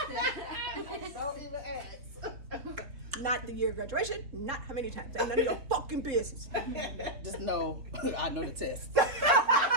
Don't even ask. Not the year of graduation. Not how many times. Ain't none of your fucking business. Just know, I know the test.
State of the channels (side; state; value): left; late; 3.6 ms